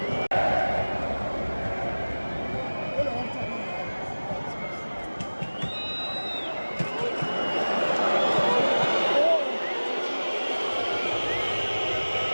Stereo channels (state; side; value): inverted; both; correlation -1.00